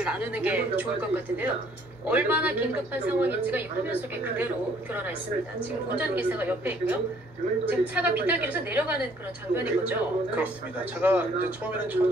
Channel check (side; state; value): both; normal; correlation 0.61